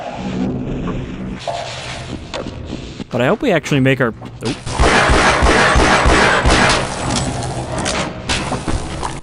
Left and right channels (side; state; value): both; identical; correlation 1.00